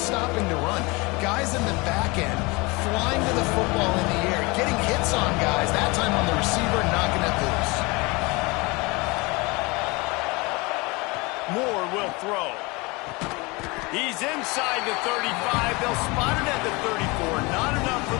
stopping to run. Guys in the back end flying to the football in the air, getting hits on guys, that time on the receiver, knocking it loose. Moore will throw. He's inside the 35. They'll spot it at the 34. Not enough for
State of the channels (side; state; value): right; quieter; 25.6 dB